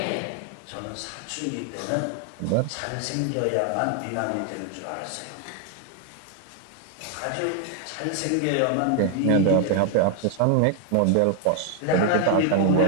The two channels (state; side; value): different; both; correlation 0.00